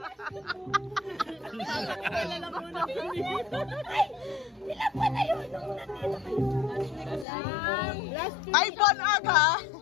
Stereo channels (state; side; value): drops out; right; at 7.2 s